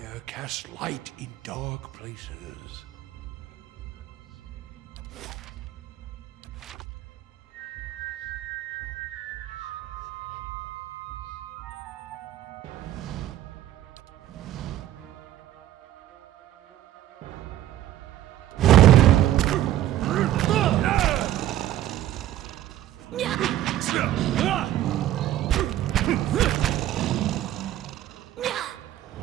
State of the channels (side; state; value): left; quieter; 13.0 dB